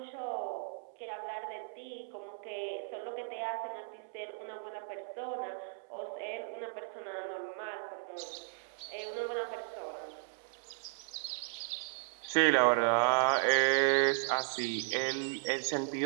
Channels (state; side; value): silent; left; 54 dB below the other